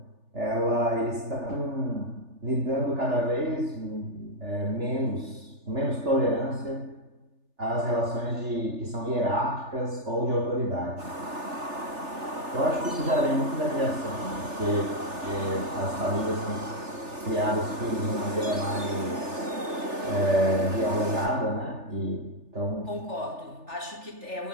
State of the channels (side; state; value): left; late; 3.4 ms